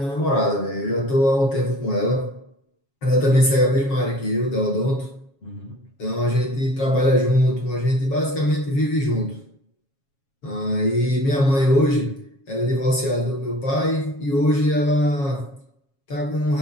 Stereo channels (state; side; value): late; right; 7.3 ms